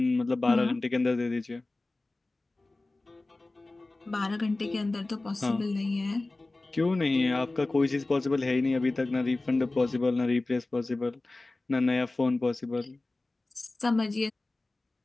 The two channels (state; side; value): quieter; right; 3.0 dB